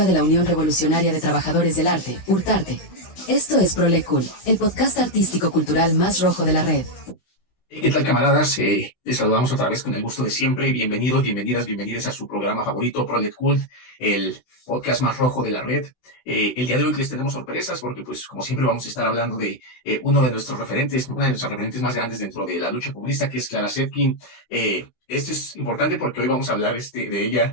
de la Unión Revolucionaria de Trabajadores del Arte, URTARTE. Esto es Proletkult, el podcast artístico cultural más rojo de la red. ¿Qué tal, camaradas? Les saludamos otra vez con el gusto de siempre. Bienvenidos, bienvenidas a su programa favorito, Proletkult, el podcast más rojo de la red. El día de hoy les tenemos sorpresas porque, pues, como siempre, vamos a estar hablando de una de nuestras referentes más grandes dentro de la lucha comunista, que es Clara Zetkin. Esto es importante porque hoy vamos a hablar de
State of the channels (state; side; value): late; right; 16 ms